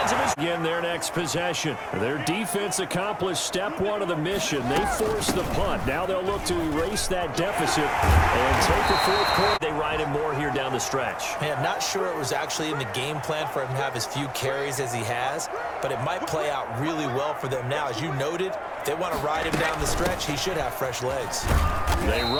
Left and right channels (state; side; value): identical; both; correlation 1.00